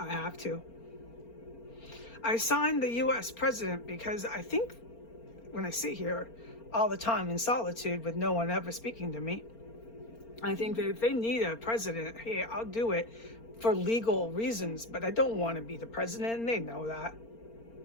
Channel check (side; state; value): right; late; 4.4 ms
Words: have to. I signed the U.S. president because I think when I sit here all the time in solitude with no one ever speaking to me, I think that if they need a president, hey, I'll do it for legal reasons, but I don't want to be the president, and they know that.